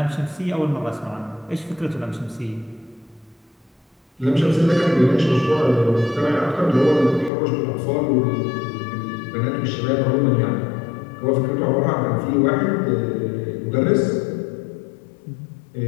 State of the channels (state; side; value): drops out; right; at 7.3 s